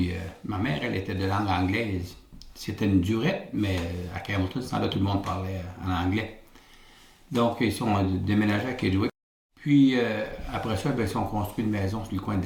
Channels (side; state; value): both; identical; correlation 1.00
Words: ma mère, elle était de langue anglaise. C'était une durette, mais à Campbellton, ce temps-là, tout le monde parlait en anglais. Donc, ils sont déménagés à Kedgewick. Puis, après ça, ils ont construit une maison sur le coin de